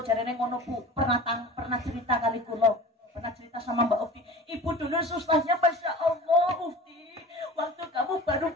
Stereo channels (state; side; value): normal; both; correlation 0.37